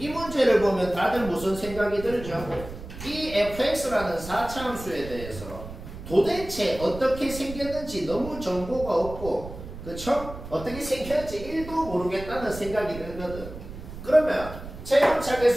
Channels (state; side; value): noise; right; rumble, 12 dB below the sound